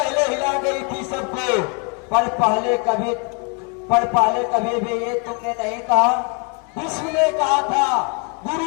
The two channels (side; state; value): right; quieter; 36.1 dB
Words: हिला गई थी सबको, पर पहले कभी भी ये तुमने नहीं कहा। विश्व ने कहा था